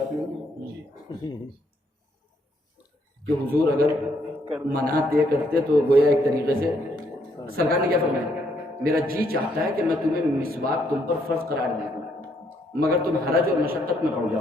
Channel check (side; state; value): both; normal; correlation 0.72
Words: نہیں. کہ حضور اگر منع طے کرتے تو گویا ایک طریقے سے سرکار نے کیا فرمایا, میرا جی چاہتا ہے کہ میں تمہیں مسواک تم پر فرض قرار دے دوں, مگر تم حرج اور مشقت میں پڑ